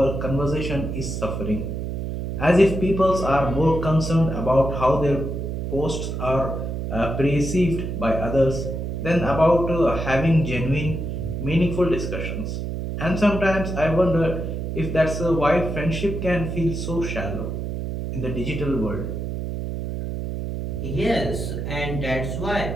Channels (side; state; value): right; noise; hum, 4 dB below the sound